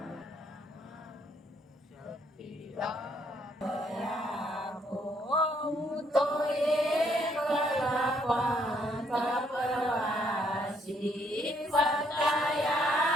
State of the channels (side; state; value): both; normal; correlation 0.70